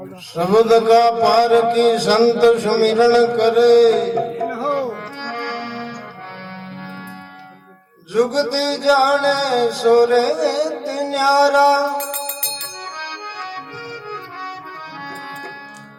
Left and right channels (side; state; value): both; identical; correlation 1.00